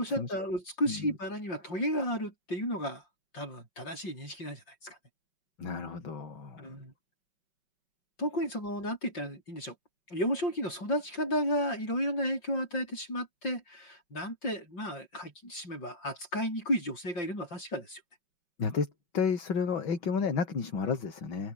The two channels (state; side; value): late; right; 5.7 ms